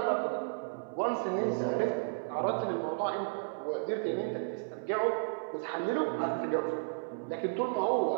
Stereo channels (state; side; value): silent; left; digital silence